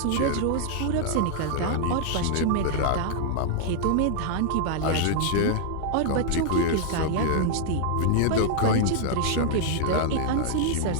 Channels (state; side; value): different; both; correlation 0.00